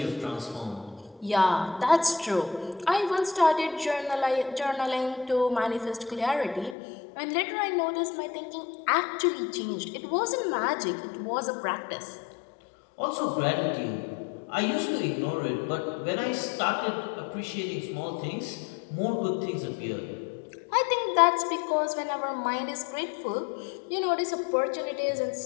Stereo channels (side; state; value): right; drops out; at 6.8 s